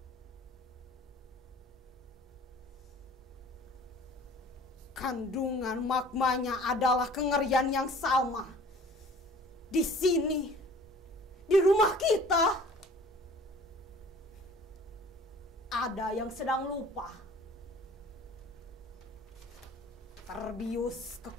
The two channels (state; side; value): normal; both; correlation 0.49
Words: Kandungan maknanya adalah kengerian yang sama. Di sini, di rumah kita, ada yang sedang lupa, terbius